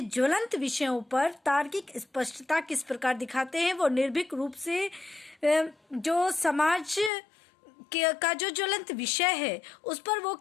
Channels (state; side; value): drops out; right; at 7.1 s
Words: ज्वलंत विषयों पर तार्किक स्पष्टता किस प्रकार दिखाते हैं। वो निर्भीक रूप से जो समाज का जो ज्वलंत विषय है उस पर वो